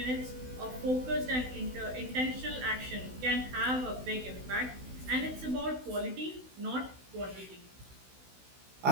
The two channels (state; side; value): late; left; 16 ms